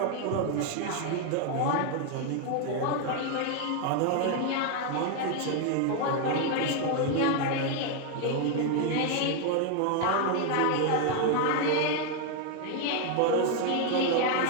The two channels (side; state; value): both; different; correlation 0.01